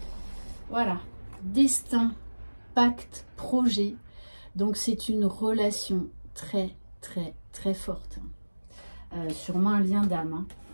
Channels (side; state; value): both; inverted; correlation -1.00